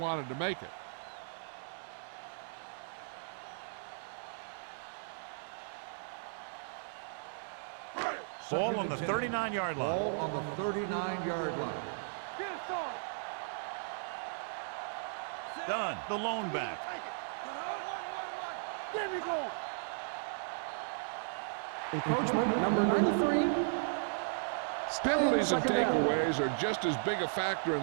to make it. Ball on the 39-yard line. Ball on the 39-yard line. Get it started. Done. The lone back. There we go. Encroachment number 93. Penalties and Second down. takeaways are just as big a factor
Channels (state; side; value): silent; left; digital silence